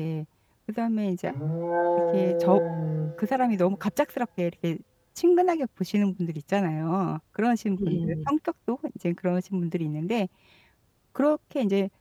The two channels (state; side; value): identical; both; correlation 1.00